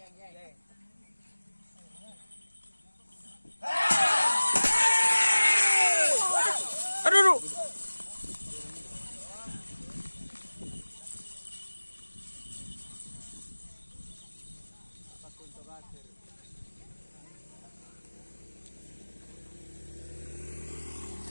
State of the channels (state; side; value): inverted; both; correlation -1.00